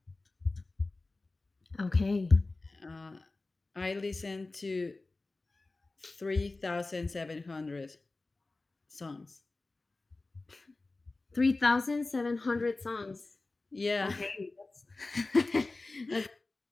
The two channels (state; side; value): quieter; right; 3.3 dB